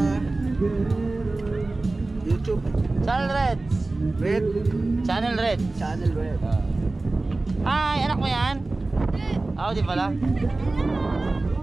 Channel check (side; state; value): left; quieter; 3.2 dB